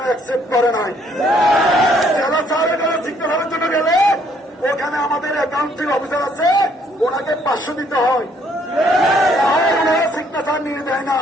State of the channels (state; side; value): normal; both; correlation 0.66